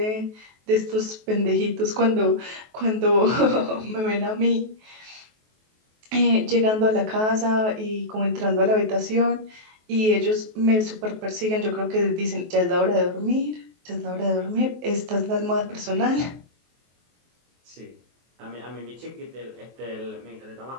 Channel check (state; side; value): late; left; 23 ms